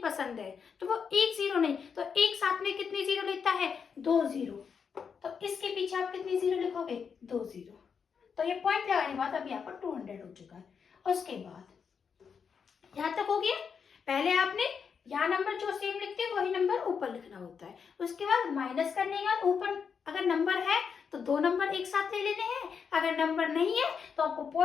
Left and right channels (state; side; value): quieter; right; 6.4 dB